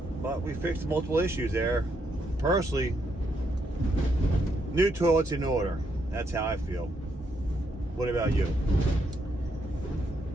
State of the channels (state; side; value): normal; both; correlation 0.77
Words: But we fixed multiple issues there. Personally, new toilet's in order. That's how I feel. What about you?